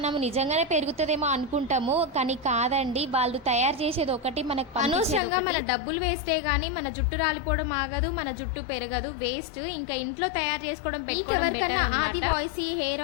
నిజంగానే పెరుగుతుందేమో అనుకుంటాము, కానీ కాదండి. వాళ్ళు తయారు చేసేది ఒకటి, మనకు అనవసరంగా మన డబ్బులు వేస్టే గానీ మన జుట్టు రాలిపోవడం ఆగదు, మన జుట్టు పెరగదు, వేస్ట్. ఇంకా ఇంట్లో తయారు చేసుకోవడం పెట్టుకోవడం. ఆది వాయిస్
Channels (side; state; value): right; drops out; at 5.2 s